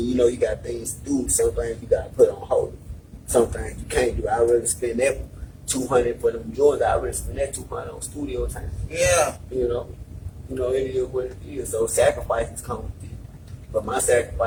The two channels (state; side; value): identical; both; correlation 1.00